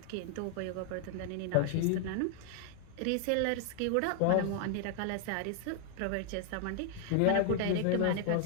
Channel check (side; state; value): both; different; correlation 0.00